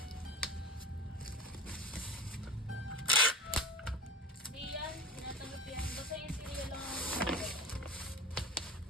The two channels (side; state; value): both; normal; correlation 0.32